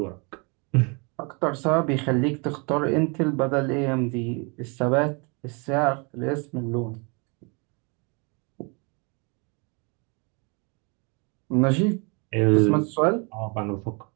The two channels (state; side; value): quieter; left; 32.1 dB